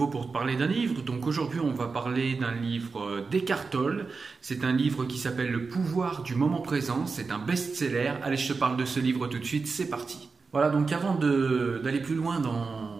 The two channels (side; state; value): left; quieter; 4.5 dB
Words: pour te parler d'un livre. Donc aujourd'hui, on va parler d'un livre d'Eckhart Tolle. C'est un livre qui s'appelle Le pouvoir du moment présent. C'est un best-seller. Allez, je te parle de ce livre tout de suite, c'est parti. Voilà, donc avant d'aller plus loin